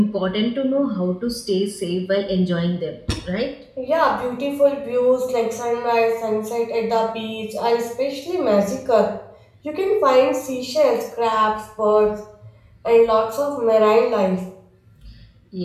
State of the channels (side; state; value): both; identical; correlation 1.00